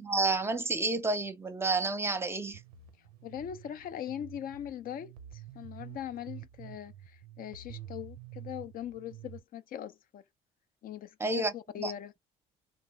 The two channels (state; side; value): normal; both; correlation 0.20